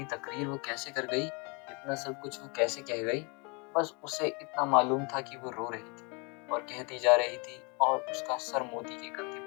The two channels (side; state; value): right; quieter; 31.5 dB